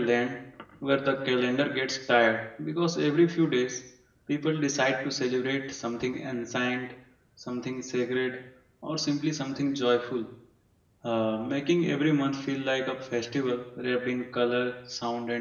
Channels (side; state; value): both; identical; correlation 1.00